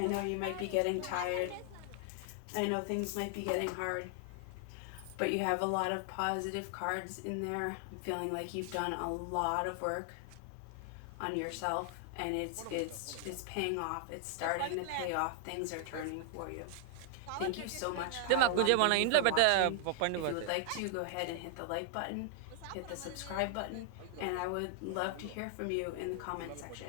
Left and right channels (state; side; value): different; both; correlation 0.00